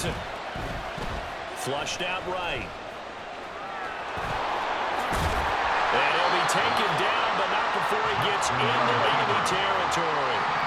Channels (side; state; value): both; identical; correlation 1.00